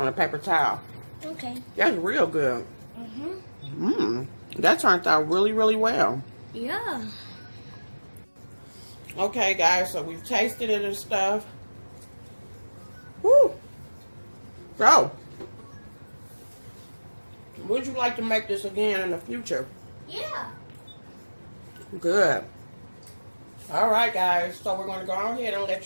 a paper towel. Okay. That's real good. That turned out really, really well. Yeah. Okay, guys, so we've tasted it and stuff. Woo! So, would you like to make this again in the future? Yeah. Good. All right, guys. So we're going to go ahead and let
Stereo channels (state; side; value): inverted; both; correlation -1.00